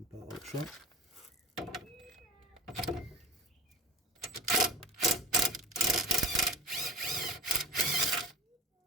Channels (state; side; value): normal; both; correlation 0.37